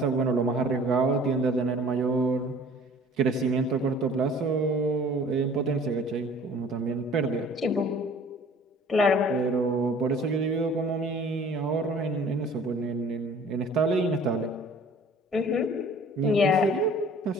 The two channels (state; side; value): normal; both; correlation 0.50